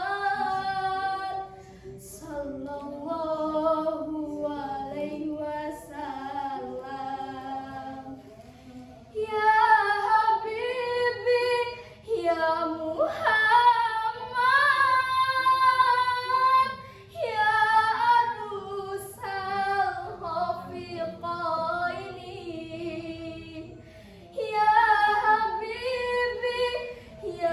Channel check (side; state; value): both; identical; correlation 1.00